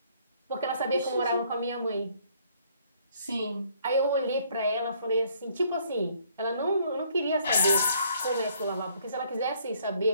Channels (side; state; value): both; inverted; correlation -0.64